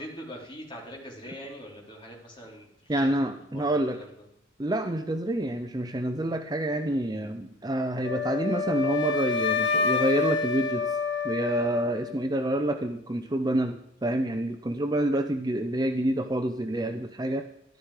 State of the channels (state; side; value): normal; both; correlation 0.53